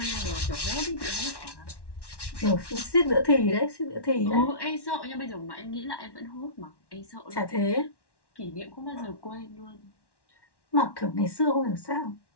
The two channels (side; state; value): right; late; 1.1 ms